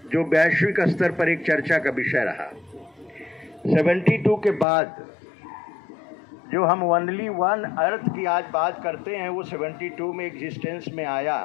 जो वैश्विक स्तर पर एक चर्चा का विषय रहा। 72 के बाद जो हम ओनली वन अर्थ की आज बात करते हैं, वो 72 में एग्जिस्टेंस में आया।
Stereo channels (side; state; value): right; drops out; at 4.7 s